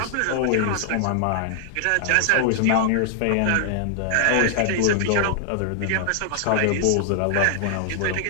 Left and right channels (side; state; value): both; different; correlation 0.00